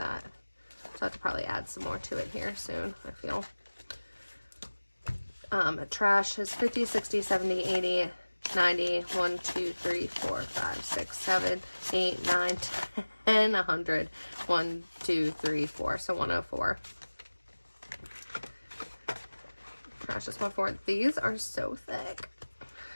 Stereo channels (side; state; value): both; inverted; correlation -1.00